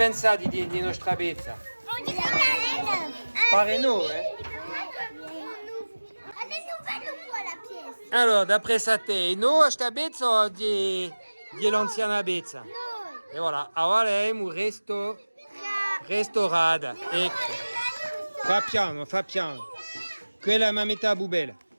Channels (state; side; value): inverted; both; correlation -1.00